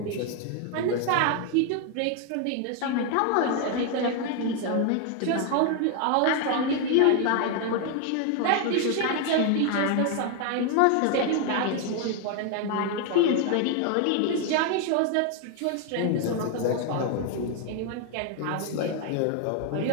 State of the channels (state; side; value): different; both; correlation 0.00